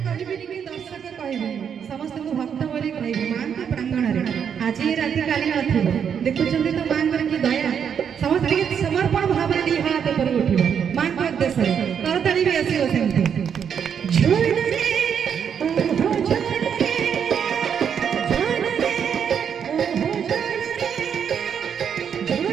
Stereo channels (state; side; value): quieter; left; 7.7 dB